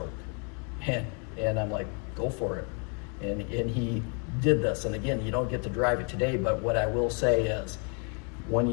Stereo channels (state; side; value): quieter; right; 37.8 dB